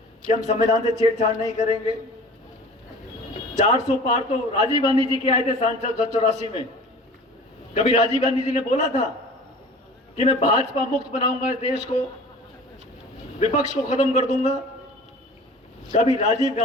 कि हम संविधान से छेड़छाड़ नहीं करेंगे? 400 पार तो राजीव गांधी जी के आए थे सांसद 84 में। कभी राजीव गांधी जी ने बोला था कि मैं भाजपा मुक्त बनाऊंगा इस देश को, विपक्ष को खत्म कर दूंगा? कभी राजीव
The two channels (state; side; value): normal; both; correlation 0.42